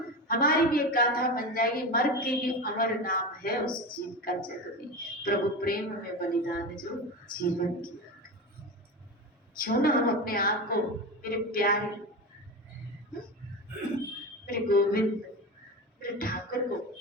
हमारी भी एक गाथा बन जाएगी। मर के भी अमर नाम है उस जीव का जग में, प्रभु प्रेम में बलिदान जो जीवन किया। क्यों ना हम अपने आप को मेरे प्यारे, मेरे गोविंद, मेरे ठाकुर को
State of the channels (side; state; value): both; normal; correlation 0.23